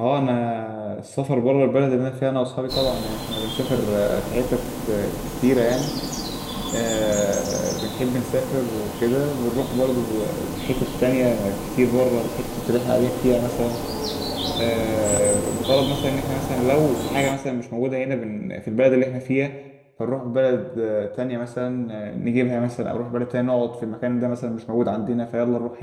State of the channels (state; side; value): identical; both; correlation 1.00